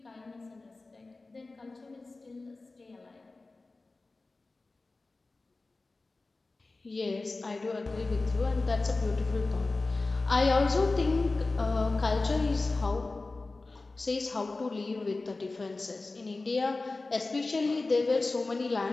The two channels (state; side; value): quieter; right; 3.4 dB